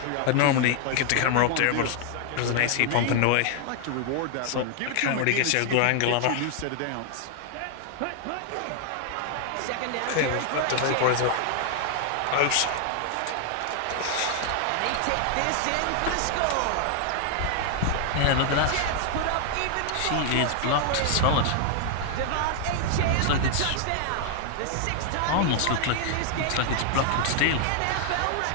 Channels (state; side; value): different; both; correlation 0.00